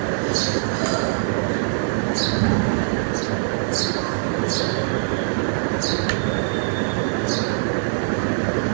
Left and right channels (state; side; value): silent; left; digital silence